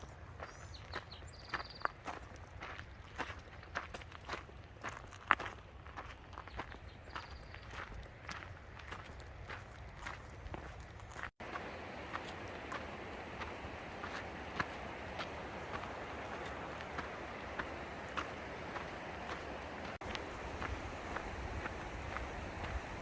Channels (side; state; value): both; identical; correlation 1.00